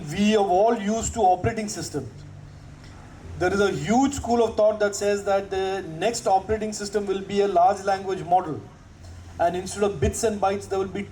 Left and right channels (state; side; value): identical; both; correlation 1.00